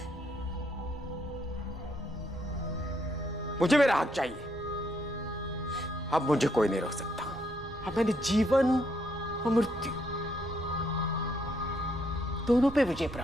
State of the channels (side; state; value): both; normal; correlation 0.73